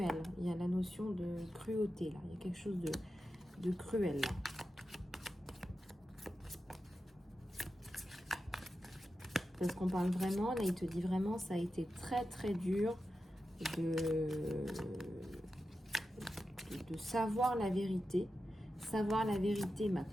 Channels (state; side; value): normal; both; correlation 0.91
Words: Il y a la notion de cruauté là. Il y a quelque chose de cruel là. Parce qu'on parle vraiment, là il te dit vraiment, ça a été très très dur de savoir la vérité. Savoir la vérité m'a